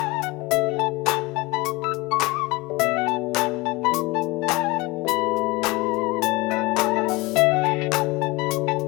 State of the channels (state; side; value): quieter; right; 23.0 dB